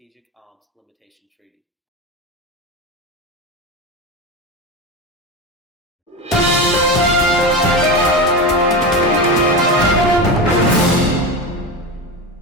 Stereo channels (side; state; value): both; normal; correlation 0.21